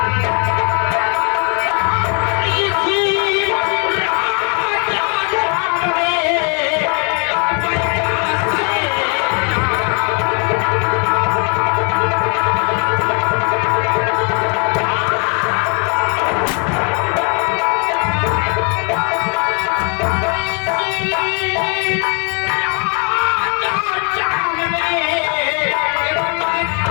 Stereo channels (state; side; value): quieter; right; 36.0 dB